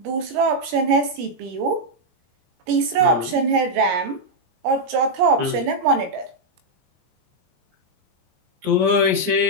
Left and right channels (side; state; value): left; late; 19 ms